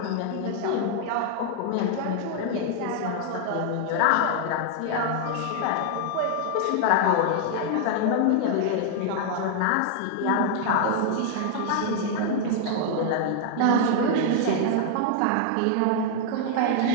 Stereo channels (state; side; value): different; both; correlation 0.00